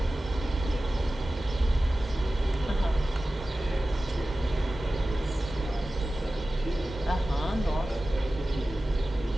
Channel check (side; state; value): both; normal; correlation 0.95